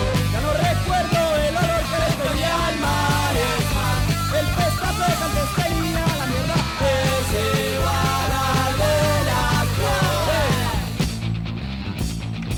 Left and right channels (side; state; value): both; identical; correlation 1.00